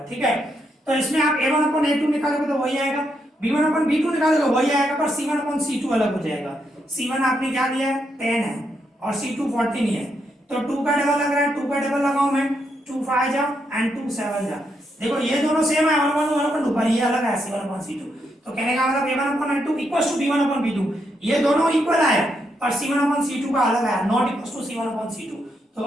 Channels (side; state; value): both; normal; correlation 0.79